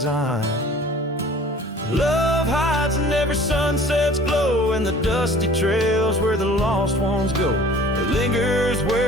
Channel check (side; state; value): both; normal; correlation 0.48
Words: Love hides in every sunset's glow, and the dusty trails where the lost ones go. It lingers